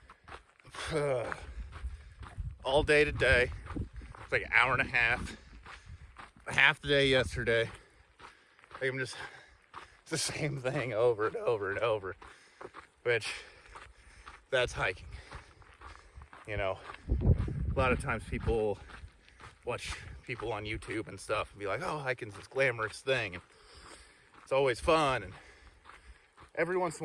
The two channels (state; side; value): identical; both; correlation 1.00